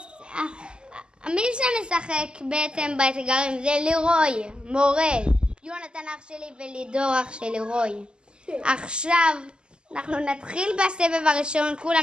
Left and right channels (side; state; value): left; late; 0.049 ms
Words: מי שמשחק בעצם באתגרים זה לירוי, מורל, יונתן אח שלי ולידור אח של לירוי. עכשיו אנחנו נתחיל בסבב הראשון,